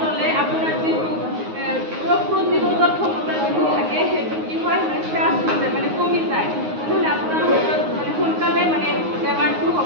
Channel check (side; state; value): left; late; 9.5 ms